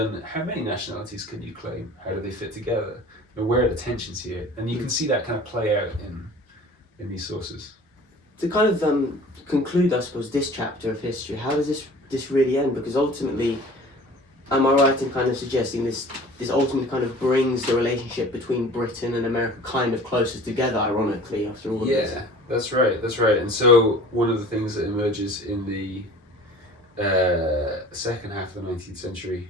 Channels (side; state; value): both; normal; correlation 0.44